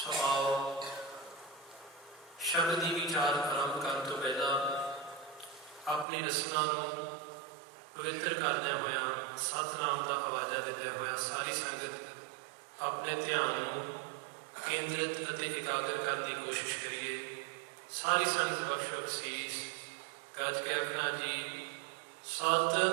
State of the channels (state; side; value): drops out; left; at 6.1 s